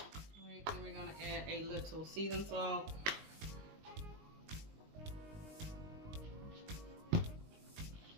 right, then we're gonna add a little seasoned salt.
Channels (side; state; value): left; late; 19 ms